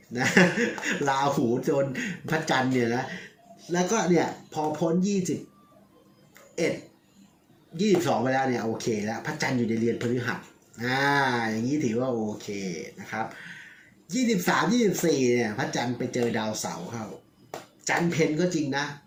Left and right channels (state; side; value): identical; both; correlation 1.00